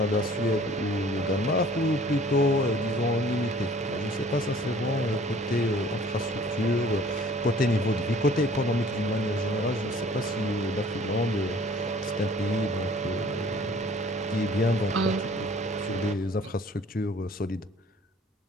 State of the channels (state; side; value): normal; both; correlation 0.52